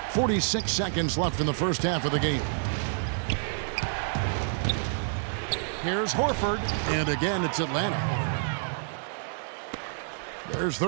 46 seconds left in the first half of the game. Here's Horford, and again it's Atlanta. There's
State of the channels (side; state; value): left; silent; digital silence